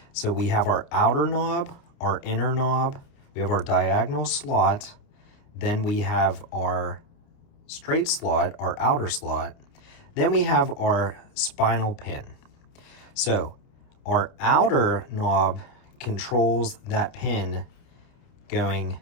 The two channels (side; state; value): right; late; 29 ms